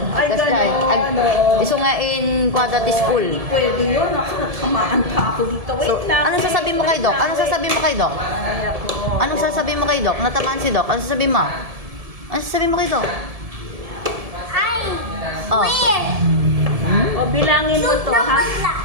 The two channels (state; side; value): late; left; 1.7 ms